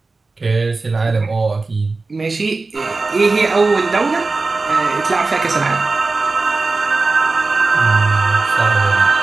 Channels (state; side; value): quieter; left; 3.7 dB